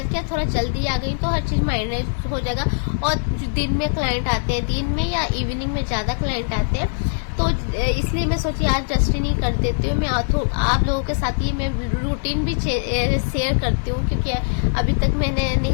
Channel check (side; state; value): right; silent; 62 dB below the other